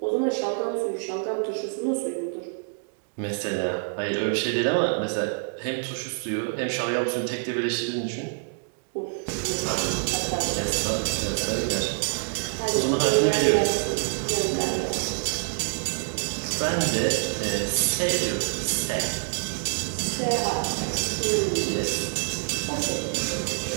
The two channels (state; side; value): silent; left; digital silence